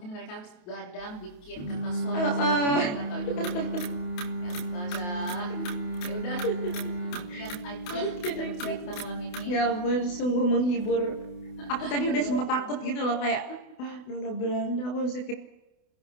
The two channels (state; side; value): late; right; 28 ms